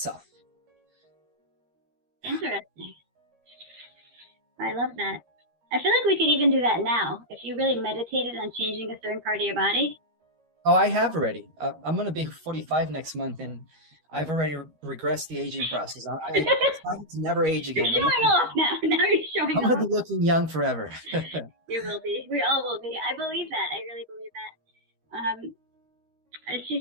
Interesting. I love that. I feel like we could even do that now. If you really meditated on changing a certain part of your body. Oh, I have already. I'm going to be 45 next month, and I've already regressed the aging process. I never age again. You're showing off now. Now you're showing off. I'm going to be looking young forever. You will be. We all will be. I believe that. I really believe that. And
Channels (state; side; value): late; left; 13 ms